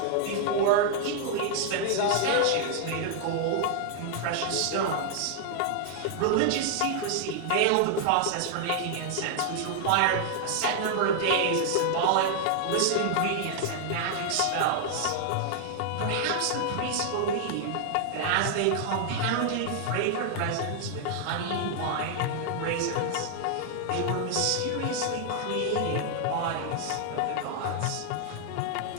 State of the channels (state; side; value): different; both; correlation 0.00